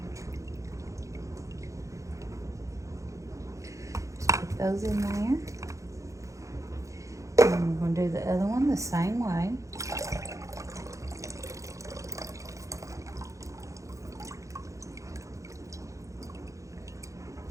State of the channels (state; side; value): late; left; 0.15 ms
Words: Just put those in there. And we're going to do the other one the same way.